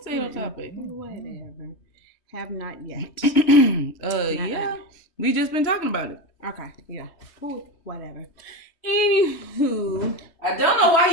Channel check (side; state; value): right; late; 3.1 ms